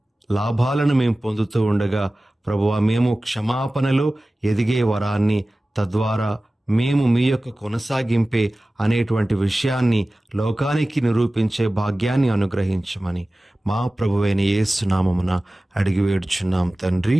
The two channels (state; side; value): normal; both; correlation 0.97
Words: లాభాలను మేము పొందుతూ ఉండగా, ప్రభువా, మేము క్షమాపణలో ఎదిగే వరాన్ని, తద్వారా మేము మీ యొక్క కొనసాగింపే అనేటువంటి విషయాన్ని లోకానికి నిరూపించే భాగ్యాన్ని అనుగ్రహించమని మా ప్రభువైన యేసు నామమున అడిగి వేడుచున్నాం తండ్రి.